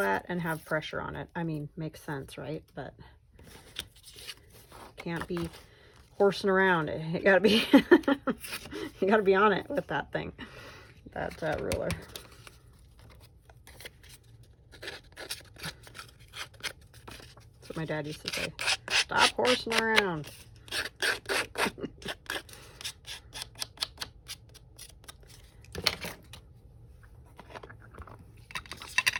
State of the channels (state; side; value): identical; both; correlation 1.00